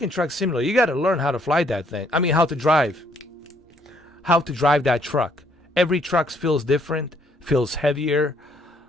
Truck Simulator, you got to learn how to fly that thing. I mean, how to drive. How to drive that truck. Every truck feels different, feels heavier.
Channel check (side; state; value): both; normal; correlation 0.67